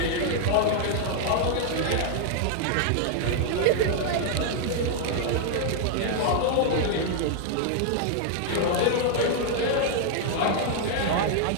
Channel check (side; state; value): both; different; correlation 0.00